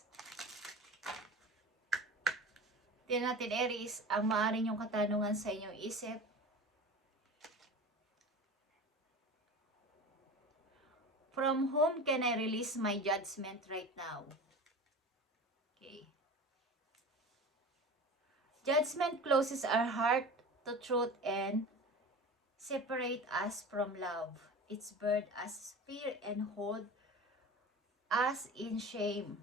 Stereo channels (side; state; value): both; normal; correlation 0.34